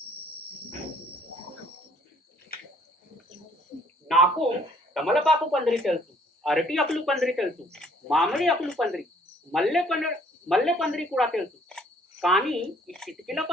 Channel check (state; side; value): normal; both; correlation 0.61